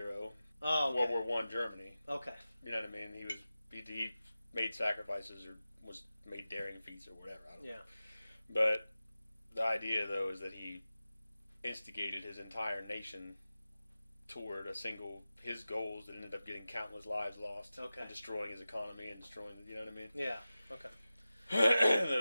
Oh, okay. World War One Germany. Okay. You know what I mean? He made sacrifices or made daring feats or whatever. I don't know. But the idea, though, is that he instigated his entire nation toward his goals that ended up getting countless lives lost. Okay. And destroying his economy and destroying, you know what I mean? Yeah. Okay.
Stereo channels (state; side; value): inverted; both; correlation -0.95